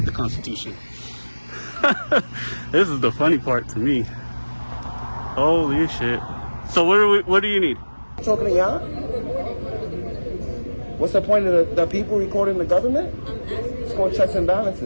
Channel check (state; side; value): inverted; both; correlation -1.00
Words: the Constitution. This is the funny part to me. Holy shit. So what do you need? Talking to y'all? What's the point of the people recording the government? It's called checks and